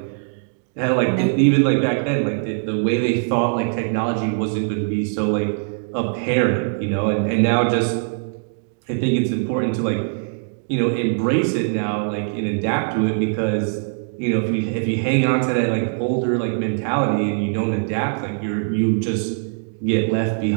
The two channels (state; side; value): silent; left; digital silence